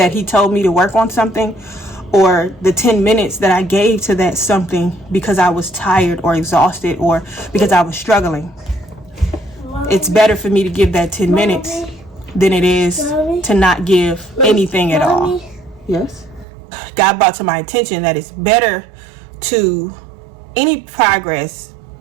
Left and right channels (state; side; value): drops out; left; at 16.4 s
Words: he told me to work on something, or the 10 minutes that I gave to that something because I was tired or exhausted or because I was struggling. It's better for me to give that 10 minutes than it is to not give anything at all. Yes. God brought to my attention that it's better to any progress